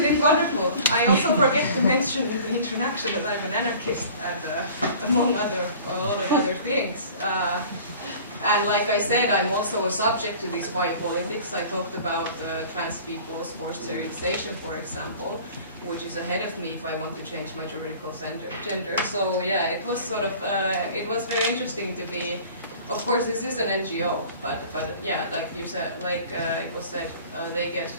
it wonderful? I also forget to mention in the introduction that I'm an anarchist and among a lot of other things. And like I said, I'm also a subject to this biopolitics. I talked about trans people's forced sterilization, for example, which is ahead of me if I want to change my juridical gender. So yeah, it was sort of, it was very interesting to be. Of course, this is an NGO, but yeah, like you said, like it was said, they get.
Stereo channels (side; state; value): both; inverted; correlation -0.45